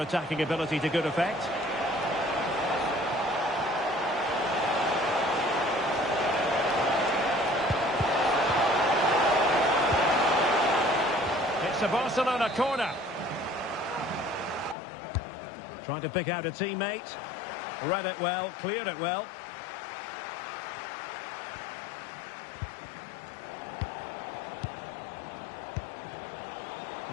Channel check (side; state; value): right; drops out; at 14.8 s